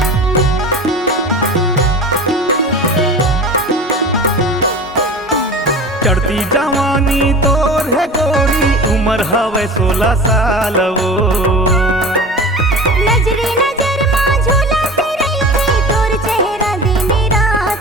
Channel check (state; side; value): normal; both; correlation 0.35